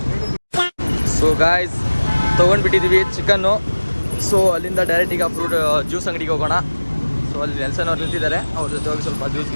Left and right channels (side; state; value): both; inverted; correlation -1.00